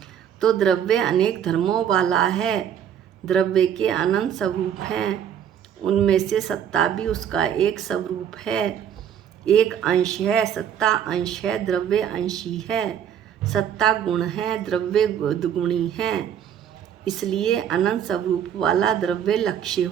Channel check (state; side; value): quieter; left; 9.2 dB